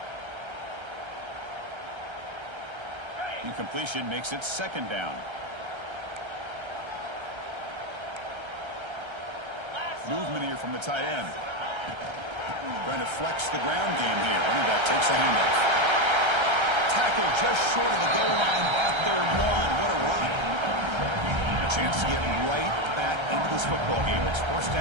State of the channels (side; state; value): left; late; 1.3 ms